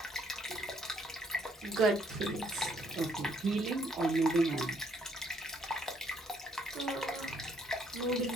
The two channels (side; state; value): both; normal; correlation 0.68